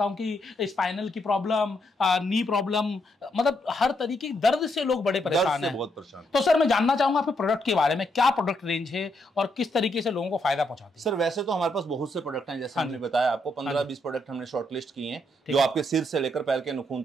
कि स्पाइनल की प्रॉब्लम, नी प्रॉब्लम, मतलब हर तरीके की दर्द से लोग बड़े परेशान हैं। बहुत परेशान। तो सर मैं जानना चाहूंगा आपके प्रोडक्ट के बारे में, क्या प्रोडक्ट रेंज है और किस तरीके से लोगों को फायदा पहुंचाते हैं? सर वैसे तो हमारे पास बहुत से प्रोडक्ट हैं, जैसे हमने बताया आपको 15-20 प्रोडक्ट हमने शॉर्टलिस्ट किए हैं, जो आपके सिर से लेकर पैर के नाखून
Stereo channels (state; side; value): normal; both; correlation 0.77